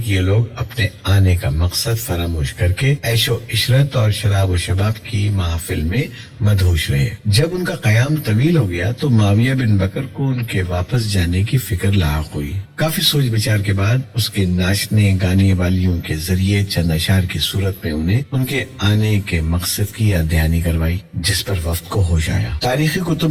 یہ لوگ اپنے آنے کا مقصد فراموش کر کے عیش و عشرت اور شراب و شباب کی محافل میں مدہوش رہے۔ جب ان کا قیام طویل ہو گیا تو معاویہ بن بکر کو ان کے واپس جانے کی فکر لاحق ہوئی۔ کافی سوچ بچار کے بعد اس کے ناچنے گانے والیوں کے ذریعے چند اشعار کی صورت میں انہیں ان کے آنے کے مقصد کی یاد دہانی کروائی، جس پر وفد کو ہوش آیا۔ تاریخی کتب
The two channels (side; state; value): both; identical; correlation 1.00